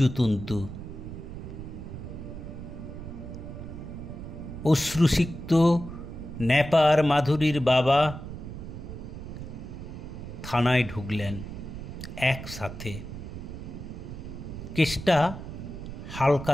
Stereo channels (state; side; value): noise; right; rumble, 9 dB below the sound